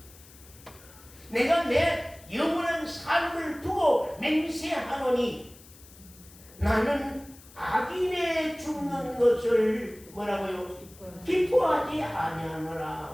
내가 내 영원한 삶을 두고 맹세하노니 나는 악인의 죽는 것을 뭐라고요? 기뻐하지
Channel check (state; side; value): noise; left; hiss, 22 dB below the sound